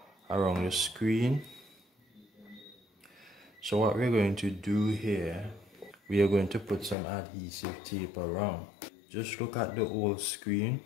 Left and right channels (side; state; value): right; drops out; at 7.0 s